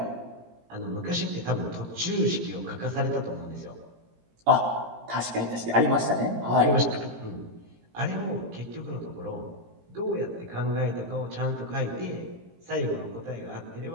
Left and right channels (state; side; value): late; left; 17 ms